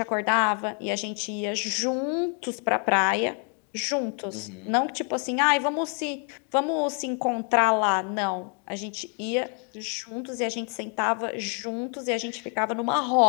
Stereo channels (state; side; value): quieter; right; 39.9 dB